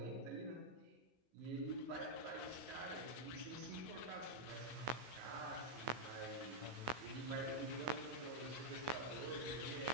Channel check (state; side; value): late; left; 15 ms